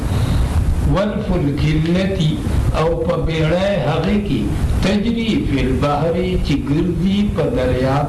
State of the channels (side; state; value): both; identical; correlation 1.00